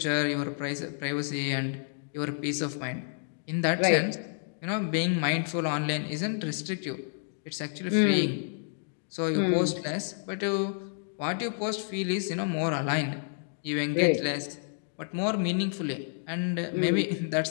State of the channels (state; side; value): silent; right; digital silence